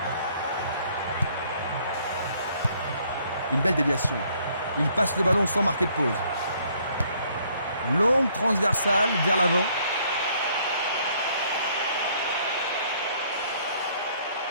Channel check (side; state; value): both; inverted; correlation -0.64